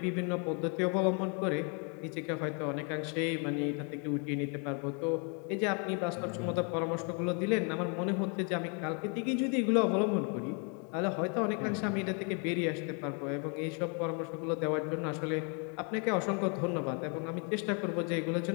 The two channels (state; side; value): quieter; right; 37.3 dB